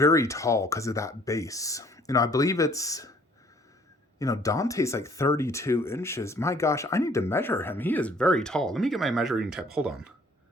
tall because of that base. You know, I believe it's, you know, Dante's like 32 inches. My gosh, I need to measure him. He is very tall. Let me get my measuring tape. Hold on.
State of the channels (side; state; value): both; normal; correlation 0.59